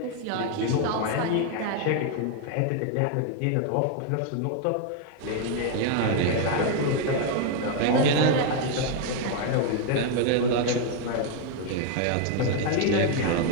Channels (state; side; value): different; both; correlation 0.01